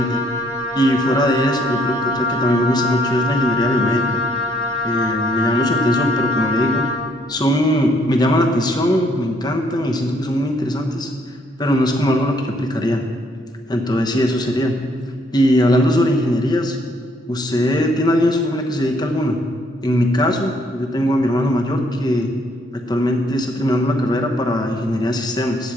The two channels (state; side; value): normal; both; correlation 0.68